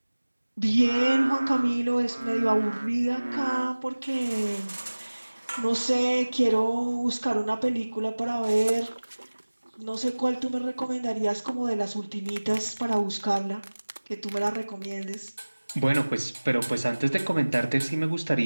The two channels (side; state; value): both; inverted; correlation -1.00